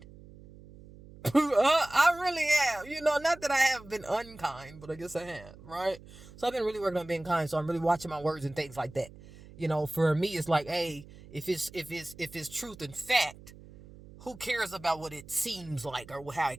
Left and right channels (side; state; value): right; noise; hum, 19 dB below the sound